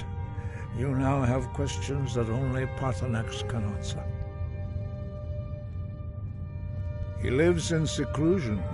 you now have questions that only Paarthurnax can answer. He lives in seclusion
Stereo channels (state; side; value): identical; both; correlation 1.00